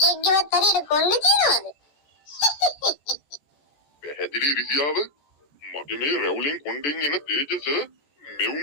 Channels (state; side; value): late; right; 14 ms